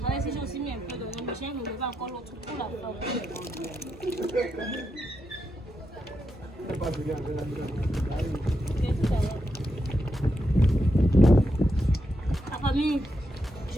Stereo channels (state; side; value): normal; both; correlation 0.84